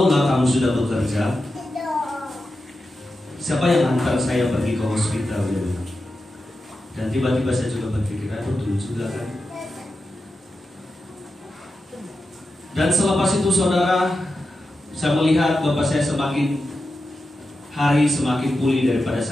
kamu sudah bekerja, siapa yang antar saya pergi ke hospital? Dan tiba-tiba saya juga berpikir, betul juga kan. Dan selepas itu, saudara, saya melihat bapak saya semakin hari semakin pulih daripada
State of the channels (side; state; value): both; normal; correlation 0.90